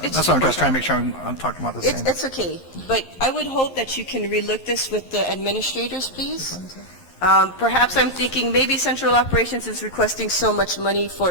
That's what I'm just trying to make sure I'm talking about the same. It's okay, but I would hope that you can relook this with the administrators, please. Perhaps I'm thinking maybe central operations is requesting so much money for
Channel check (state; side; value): late; right; 11 ms